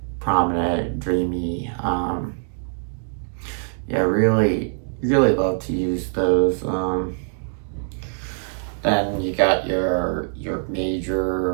prominent, dreamy. Yeah, really, really love to use those. Then you got your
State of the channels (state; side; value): silent; left; 63 dB below the other